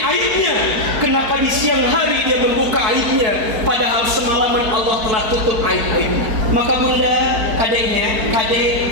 Kenapa di siang hari dia membuka aibnya padahal semalaman Allah telah tutup aib-aibnya? Maka bunda, kadeknya,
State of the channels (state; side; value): late; left; 4.5 ms